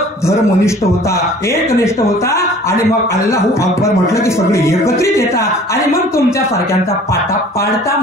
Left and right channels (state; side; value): normal; both; correlation 0.49